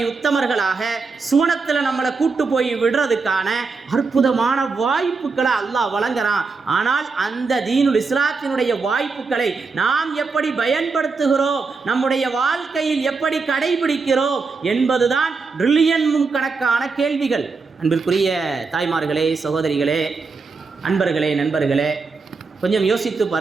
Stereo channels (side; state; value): left; quieter; 4.5 dB